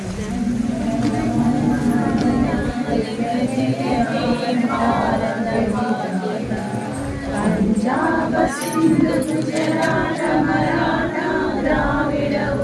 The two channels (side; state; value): both; identical; correlation 1.00